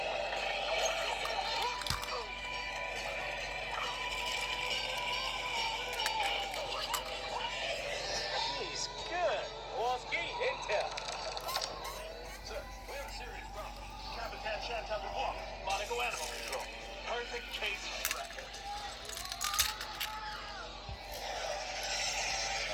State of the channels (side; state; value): both; identical; correlation 1.00